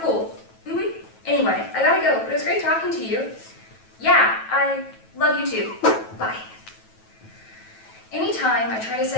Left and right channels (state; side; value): late; right; 9.1 ms